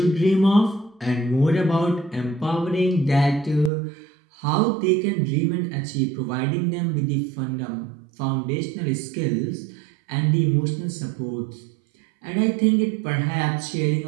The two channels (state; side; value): drops out; left; at 3.7 s